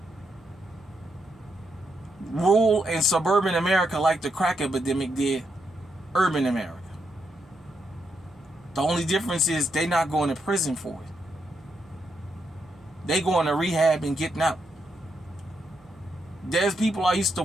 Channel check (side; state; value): right; noise; hum, 30 dB below the sound